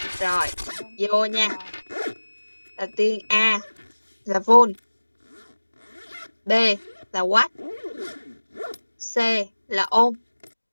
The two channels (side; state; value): both; inverted; correlation -1.00